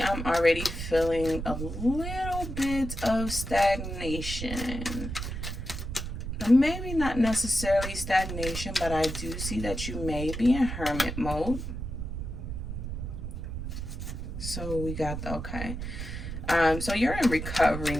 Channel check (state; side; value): noise; right; rumble, 6 dB below the sound